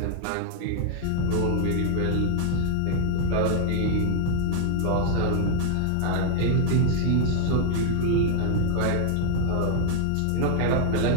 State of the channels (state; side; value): different; both; correlation 0.00